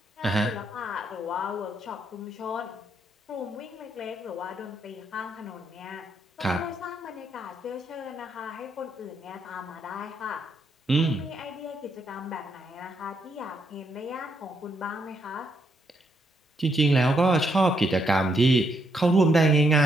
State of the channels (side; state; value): both; normal; correlation 0.76